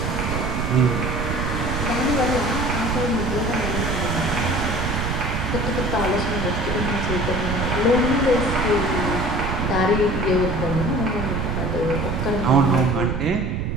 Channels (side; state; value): right; noise; rumble, 2 dB below the sound